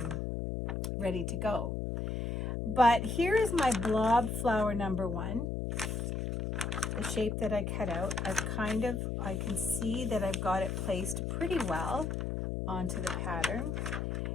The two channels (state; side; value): noise; left; hum, 2 dB below the sound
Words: ready to go. But here is my blob flower number 1, the shape that I cut out. I can see that I've got it placed pretty well onto the pattern.